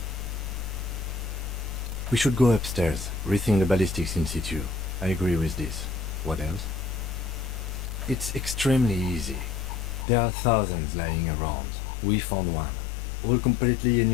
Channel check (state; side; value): drops out; right; at 10.1 s